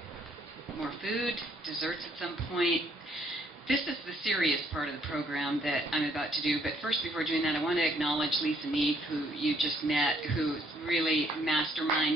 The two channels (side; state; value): both; normal; correlation 0.67